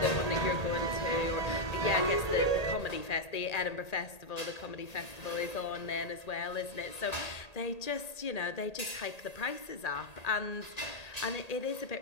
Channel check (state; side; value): late; right; 1.8 ms